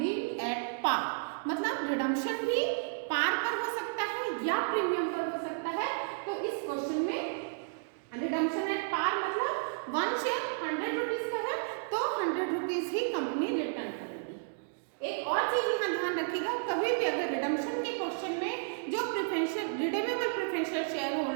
at par, मतलब रिडम्पशन भी पार पर हो सकता है या प्रीमियम पर हो सकता है। तो इस क्वेश्चन में रिडम्पशन एट पार मतलब 1 शेयर 100 रुपीज का है तो 100 रुपीज ही कंपनी रिटर्न करेगी। एक और चीज यहाँ ध्यान रखिएगा, कभी भी अगर रिडम्पशन के क्वेश्चन में जो preferential redeemable preferential share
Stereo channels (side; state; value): left; silent; digital silence